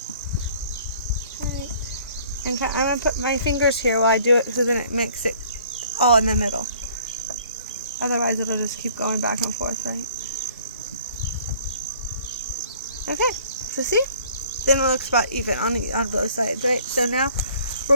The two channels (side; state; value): both; inverted; correlation -0.55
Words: Tight. And I'm going to put my fingers here while I do it, so then it makes it all in the middle. Otherwise it'll just keep going back and forth, right? Okay, so see? Then it looks about even on both sides, right? So now we're